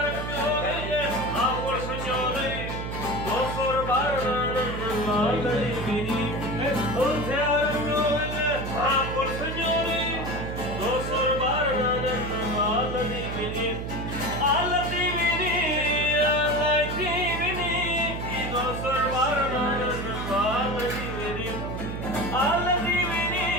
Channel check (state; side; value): noise; right; hum, 5 dB below the sound